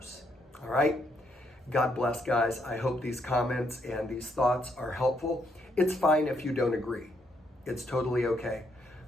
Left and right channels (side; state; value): both; normal; correlation 0.75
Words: All right? God bless, guys. I hope these comments and these thoughts are helpful. It's fine if you don't agree. It's totally okay.